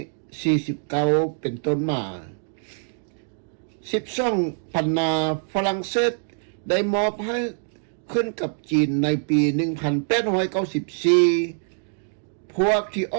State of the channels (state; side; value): silent; left; digital silence